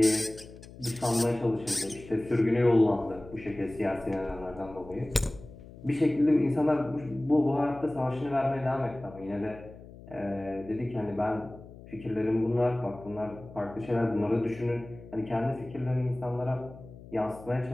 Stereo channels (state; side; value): noise; left; hum, 18 dB below the sound